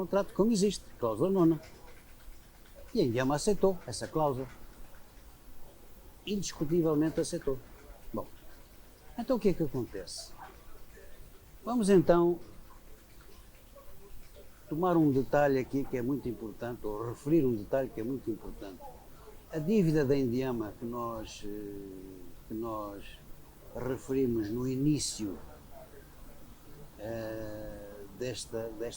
como existe, cláusula 9. E a Indiama aceitou essa cláusula. Indiscutivelmente aceitou. Bom, então o que é que acontece? Vamos então tomar um detalhe aqui que é muito importante, ou referir um detalhe que é muito importante. A dívida da Indiama que nós referimos no início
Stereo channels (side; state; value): both; identical; correlation 1.00